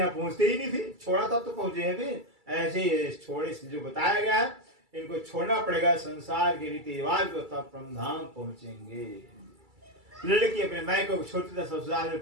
पहुंचते ही नहीं थे, छोड़ा तब तो पहुंचे हैं। फिर ऐसे छोड़े जो बताया गया है, इनको छोड़ना पड़ेगा, संसार के रीति रिवाज को, तब परम धाम पहुंचेंगे। लड़की अपने मायके छोड़ती तब ससुराल में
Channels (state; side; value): late; left; 2.3 ms